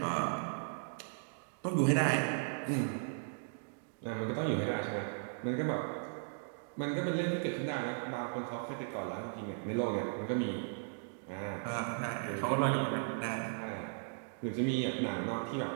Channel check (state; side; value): silent; left; digital silence